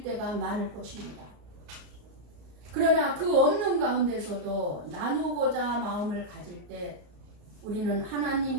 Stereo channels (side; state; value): left; late; 34 ms